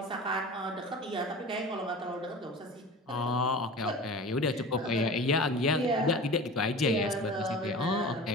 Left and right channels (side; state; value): both; normal; correlation 0.35